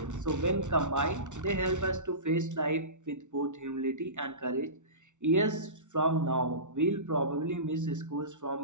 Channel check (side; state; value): left; late; 0.85 ms